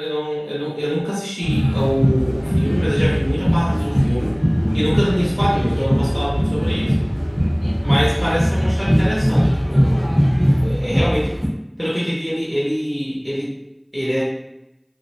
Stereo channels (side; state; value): both; identical; correlation 1.00